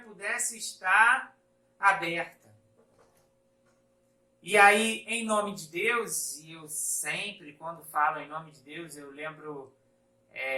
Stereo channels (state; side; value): identical; both; correlation 1.00